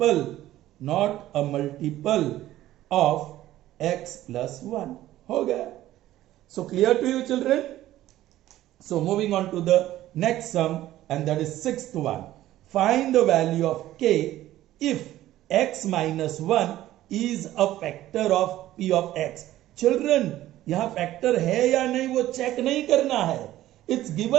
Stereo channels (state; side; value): quieter; left; 14.4 dB